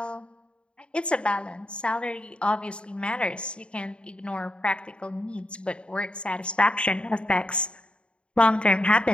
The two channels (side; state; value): right; late; 0.055 ms